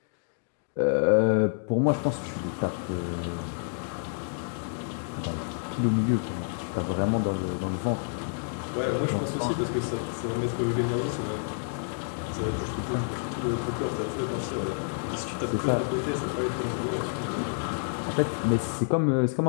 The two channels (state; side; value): silent; right; digital silence